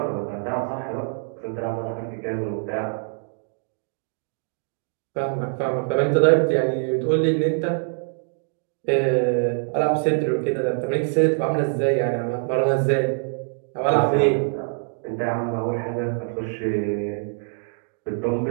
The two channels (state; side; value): silent; left; digital silence